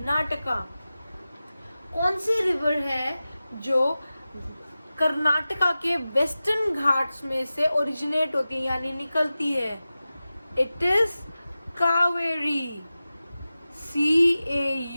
कौन सी रिवर है जो कर्नाटका के वेस्टर्न घाट्स में से ओरिजिनेट होती है यानी निकलती है? It is Cauvery,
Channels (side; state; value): both; inverted; correlation -0.95